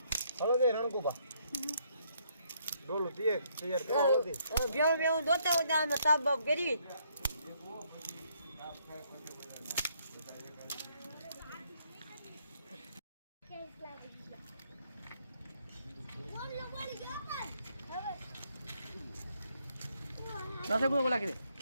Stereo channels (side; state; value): both; inverted; correlation -0.70